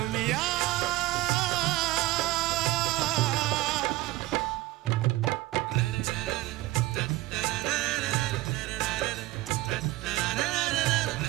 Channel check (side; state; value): left; quieter; 18.7 dB